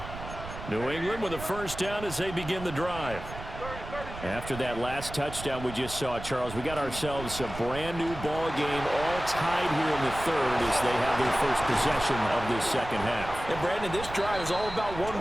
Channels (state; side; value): noise; right; rumble, 11 dB below the sound